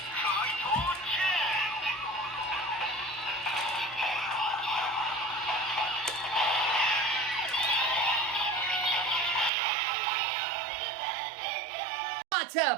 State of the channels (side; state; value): left; drops out; at 9.5 s